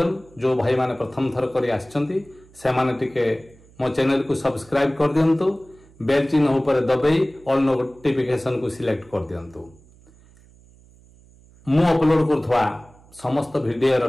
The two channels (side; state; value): right; noise; hum, 26 dB below the sound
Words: जो भाई माने प्रथम थर करी आछंती से माने टिके मो चैनल को सब्सक्राइब कर दियंतु। बेल चिन्ह ऊपर दबाई ऑल नोटिफिकेशन को सिलेक्ट कर दियंतु। मु अपलोड करथवा समस्त वीडियो रो